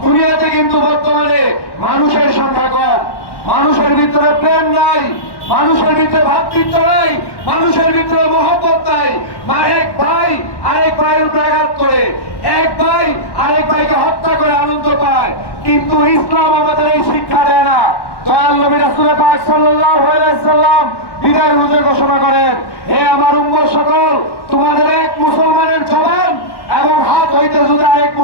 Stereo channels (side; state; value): right; late; 1.1 ms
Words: কিন্তু বর্তমানে মানুষের সংখ্যা কম, মানুষের ভিতরে প্রেম নাই, মানুষের ভিতরে ভ্রাতৃত্ব নাই, মানুষের ভিতরে মহব্বত নাই। এক ভাই আরেক ভাইয়ের উপরে আঘাত করে, এক ভাই আরেক ভাইকে হত্যা করে আনন্দ পায়, কিন্তু ইসলাম আমাদের এই শিক্ষা দেয় না। দয়াল নবী রাসূল পাক সাল্লাল্লাহু আলাইহি ওয়াসাল্লাম বিদায় হুজুর ঘোষণা করেন, হে আমার উম্মত সকল, তোমাদের এক মুসলমানের জবান এবং হাত হইতে যদি আরেক